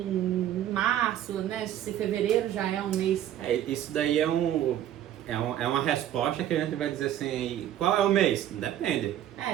março, né? Se fevereiro já é um mês. Isso daí é uma resposta que a gente vai dizer assim, qual é o mês? Depende.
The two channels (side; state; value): left; quieter; 11.5 dB